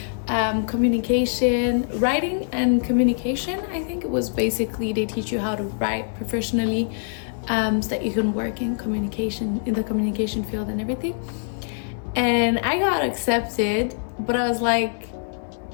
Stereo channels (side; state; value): right; silent; digital silence